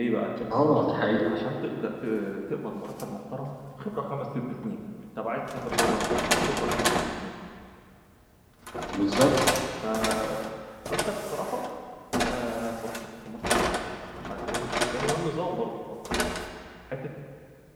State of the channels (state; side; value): identical; both; correlation 1.00